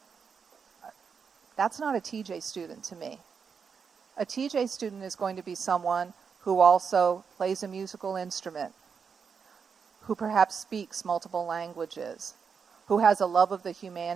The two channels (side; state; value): left; quieter; 6.2 dB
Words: that's not a TJ student to me. A TJ student is going to be someone who also plays a musical instrument, who perhaps speaks multiple languages, who has a love of the